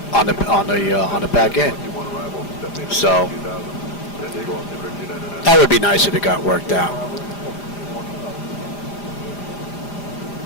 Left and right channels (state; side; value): late; right; 4.9 ms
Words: on the back end. So that would be nice if it got worked out.